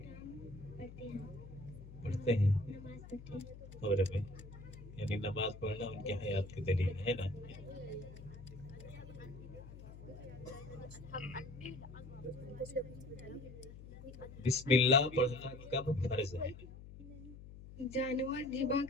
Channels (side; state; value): left; noise; hum, 14 dB below the sound